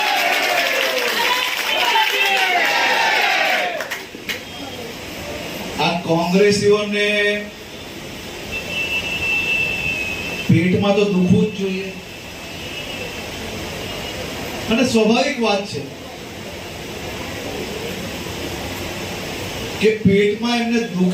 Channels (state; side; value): identical; both; correlation 1.00